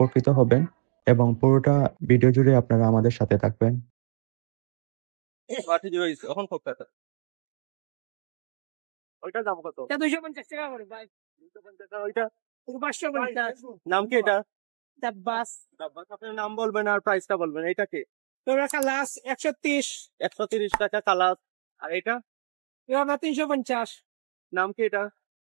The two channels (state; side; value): silent; left; digital silence